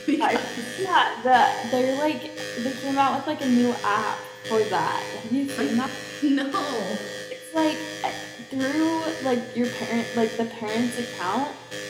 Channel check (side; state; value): both; identical; correlation 1.00